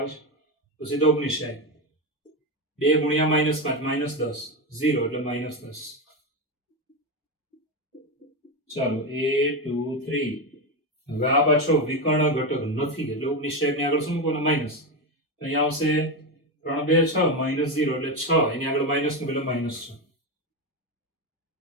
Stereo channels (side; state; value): both; normal; correlation 0.13